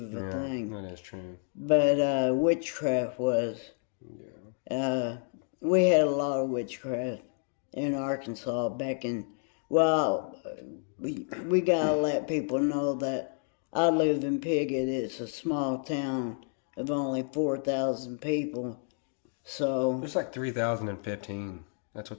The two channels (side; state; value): right; silent; 56 dB below the other